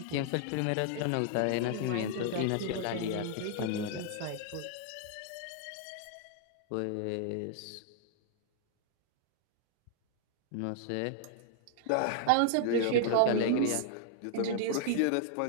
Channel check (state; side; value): different; both; correlation 0.00